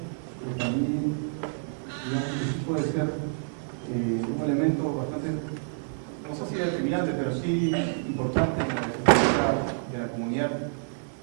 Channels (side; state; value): left; silent; digital silence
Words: pero también, digamos, que sí puede ser un elemento bastante, no sé si determinante, pero sí importante en la estructura de la comunidad.